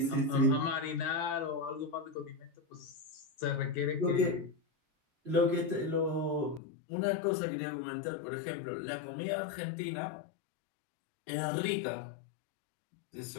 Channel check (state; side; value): drops out; right; at 6.6 s